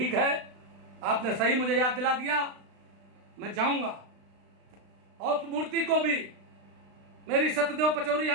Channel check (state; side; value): late; left; 36 ms